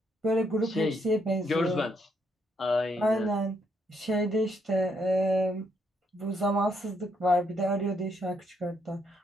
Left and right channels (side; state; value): both; normal; correlation 0.75